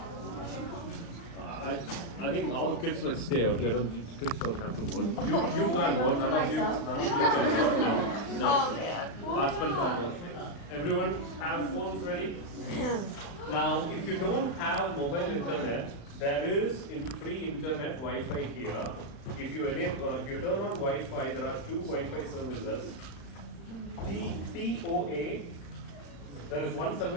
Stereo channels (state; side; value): late; right; 35 ms